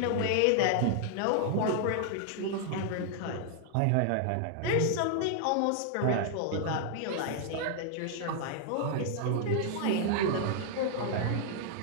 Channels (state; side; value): different; both; correlation 0.00